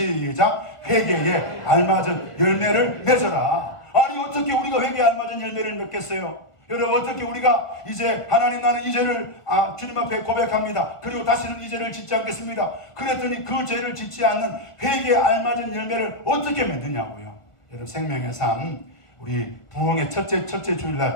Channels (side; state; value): right; late; 1.6 ms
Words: 회개에 알맞은 열매를 맺어라. 아니 어떻게 우리가 회개에 알맞은 열매를 맺겠어요? 여러분 어떻게 우리가 이제 하나님 나는 이 죄를 주님 앞에 고백합니다. 그리고 다시는 이 죄를 짓지 않겠습니다. 그랬더니 그 죄를 짓지 않는 회개에 알맞은 열매를 어떻게 맺느냐고요. 여러분 생명의 삶 우리 부흥의 첫째